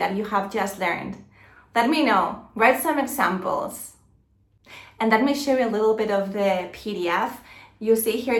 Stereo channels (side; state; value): both; identical; correlation 1.00